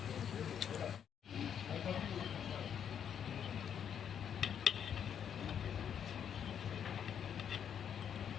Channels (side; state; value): right; quieter; 8.4 dB